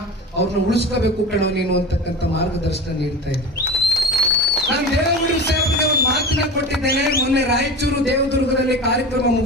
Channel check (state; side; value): normal; both; correlation 0.31